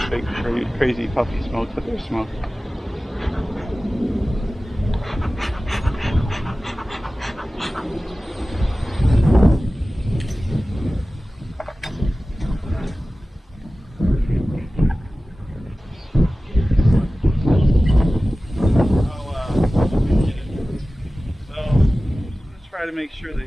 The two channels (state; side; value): normal; both; correlation 0.96